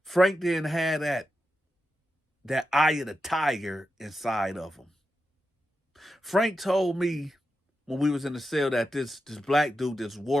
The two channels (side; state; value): both; normal; correlation 0.89